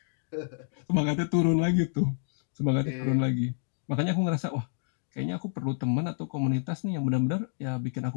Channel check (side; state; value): right; silent; digital silence